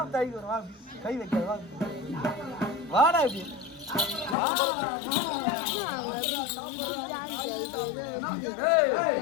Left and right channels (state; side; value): drops out; right; at 4.4 s